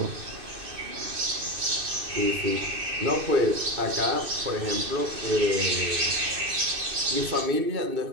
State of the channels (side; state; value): left; late; 2.6 ms